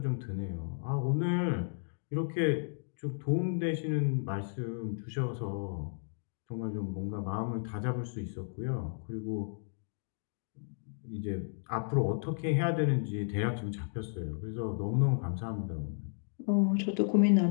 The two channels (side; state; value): right; silent; digital silence